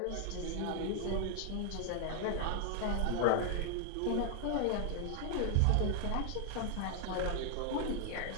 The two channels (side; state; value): both; different; correlation 0.00